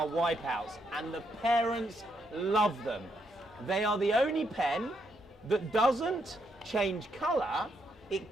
wipeouts, and the parents love them. They are the only pen that doesn't change color, it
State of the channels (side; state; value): both; normal; correlation 0.77